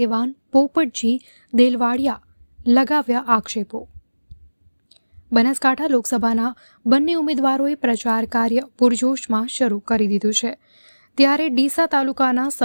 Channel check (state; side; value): inverted; both; correlation -1.00